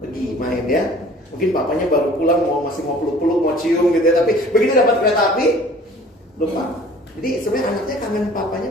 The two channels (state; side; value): normal; both; correlation 0.49